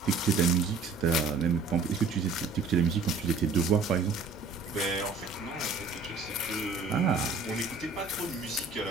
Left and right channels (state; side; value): quieter; left; 4.2 dB